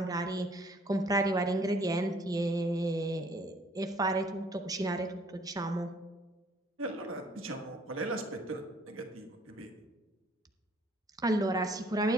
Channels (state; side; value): normal; both; correlation 0.60